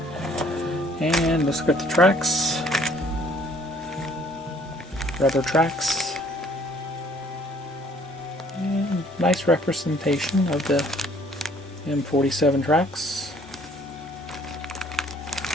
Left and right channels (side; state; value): both; normal; correlation 0.59